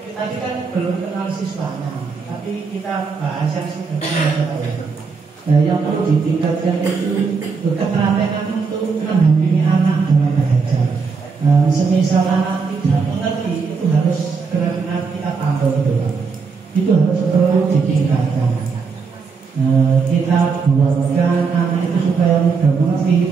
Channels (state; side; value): quieter; left; 5.1 dB